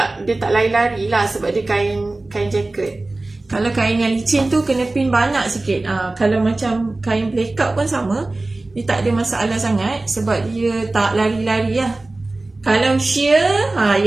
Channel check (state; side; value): quieter; left; 3.0 dB